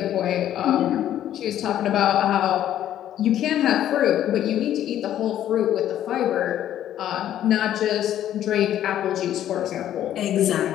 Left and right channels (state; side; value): quieter; right; 11.5 dB